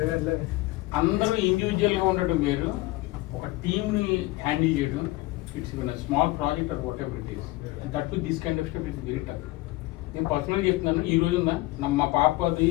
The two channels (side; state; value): right; quieter; 19.6 dB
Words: అందరూ individual గా ఉండటం వేరు, ఒక team ని handle చేయడం. It's small project or whatever it is, that to this kind of stuff it's very tough. నేను పర్సనల్గా చెప్తున్నాను, ఈ రోజు మా పాపది